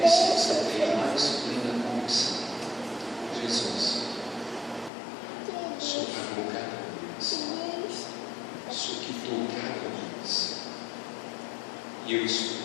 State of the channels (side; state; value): right; drops out; at 4.9 s